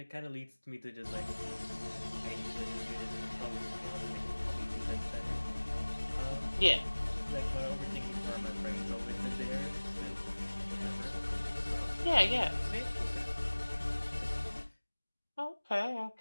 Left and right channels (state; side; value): inverted; both; correlation -1.00